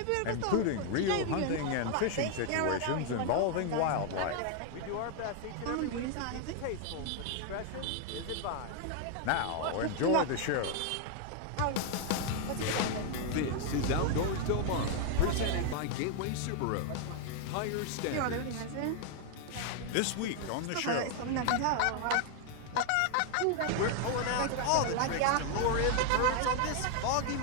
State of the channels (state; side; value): different; both; correlation 0.00